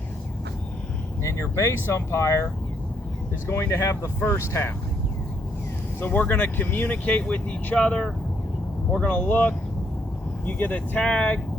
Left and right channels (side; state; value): both; normal; correlation 0.72